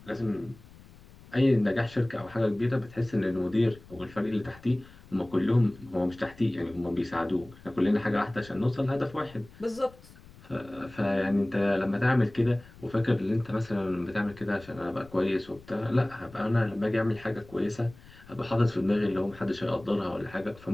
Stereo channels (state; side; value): noise; left; rumble, 22 dB below the sound